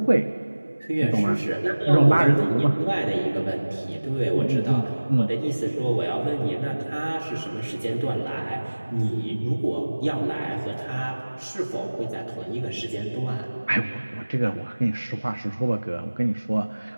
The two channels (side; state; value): both; inverted; correlation -1.00